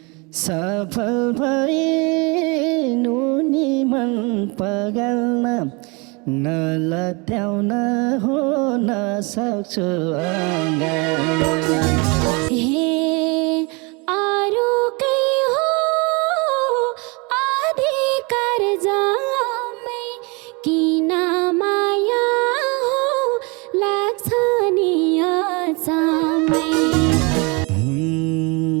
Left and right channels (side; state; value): left; quieter; 29.3 dB